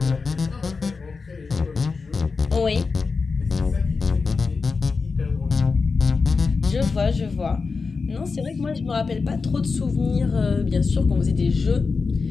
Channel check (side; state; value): right; quieter; 4.6 dB